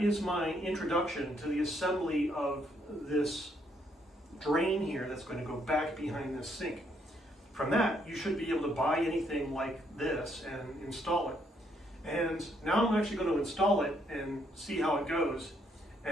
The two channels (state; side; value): normal; both; correlation 0.72